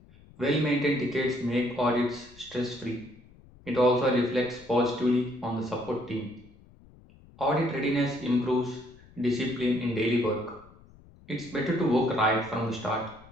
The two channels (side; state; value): left; noise; rumble, 24 dB below the sound